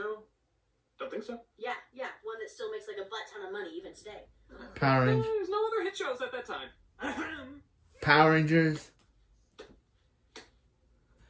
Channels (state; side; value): identical; both; correlation 1.00